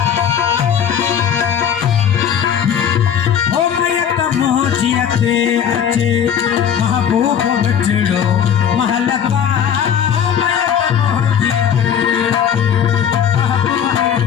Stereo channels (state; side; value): quieter; right; 8.5 dB